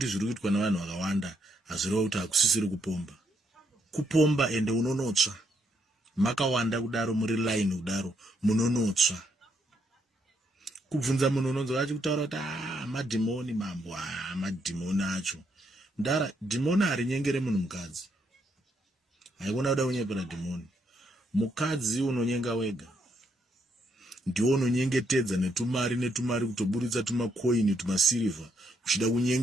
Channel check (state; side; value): normal; both; correlation 0.76